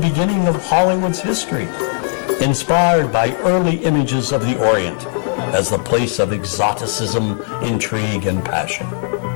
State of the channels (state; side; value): silent; right; 62 dB below the other